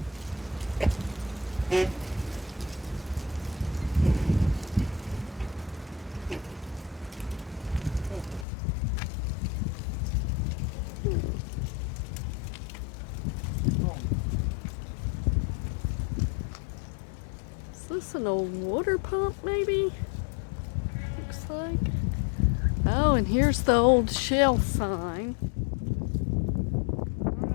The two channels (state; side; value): drops out; right; at 8.5 s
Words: Is this an old water pump maybe? Looks like. Oh, and here's the old Shell sign.